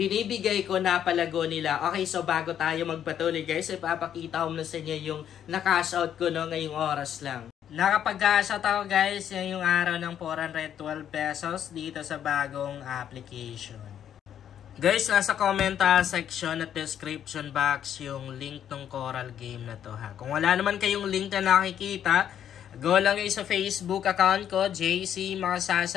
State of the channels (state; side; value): quieter; right; 9.7 dB